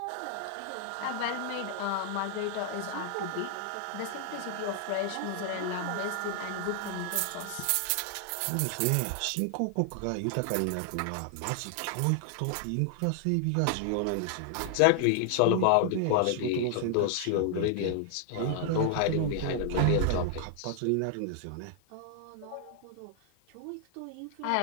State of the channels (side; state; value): both; different; correlation 0.00